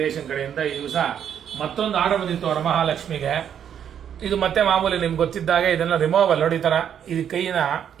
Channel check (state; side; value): quieter; left; 8.9 dB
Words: ಕಡೆಯಿಂದ ಈ ದಿವಸ ಮತ್ತೊಂದು ಆರ್ಡರ್ ಬಂದಿತ್ತು ವರಮಹಾಲಕ್ಷ್ಮಿಗೆ. ಇದು ಮತ್ತೆ ಮಾಮೂಲಿ ನಿಮ್ಗೆ ಗೊತ್ತಿದ್ದಾಗೆ ಇದನ್ನ ರಿಮೂವಲ್ ನೋಡಿ, ಈ ಥರ ಇದು ಕೈನ